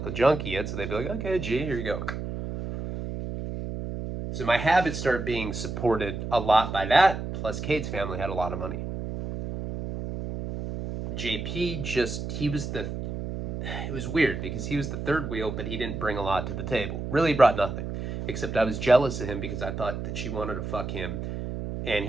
junkie yet, so they'd be like, okay, G, here you go. So my habits started being supported a lot by that, plus Kate's family had a lot of money. JP it was weird because he was the third wheel, but he didn't bring a lot to the table. Really brought nothing. Except I was jealous of him because I thought that she wanted to fuck him. And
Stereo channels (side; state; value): right; noise; hum, 5 dB below the sound